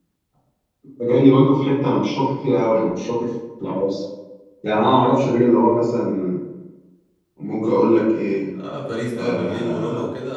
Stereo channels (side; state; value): both; identical; correlation 1.00